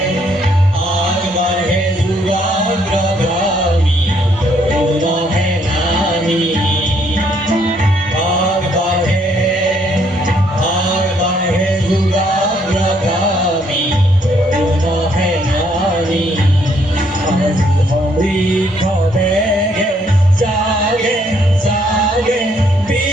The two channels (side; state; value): both; normal; correlation 0.69